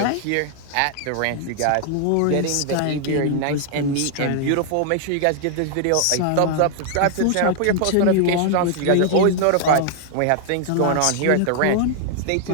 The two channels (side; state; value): both; different; correlation 0.00